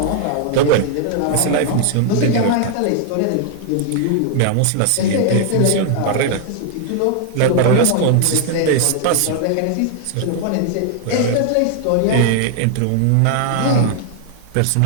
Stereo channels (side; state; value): both; different; correlation 0.00